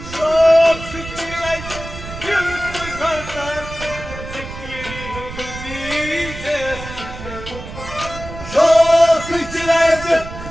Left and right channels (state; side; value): noise; right; rumble, 11 dB below the sound